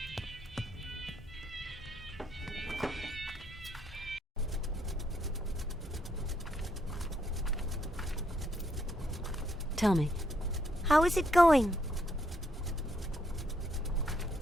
Tell me. How is it going?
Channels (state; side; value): normal; both; correlation 0.74